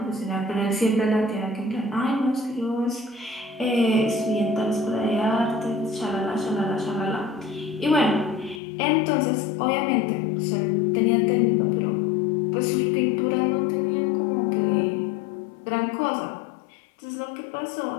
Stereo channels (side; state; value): right; drops out; at 8.6 s